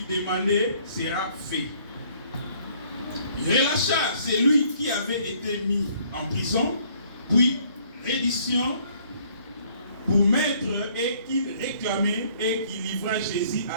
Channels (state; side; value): inverted; both; correlation -0.61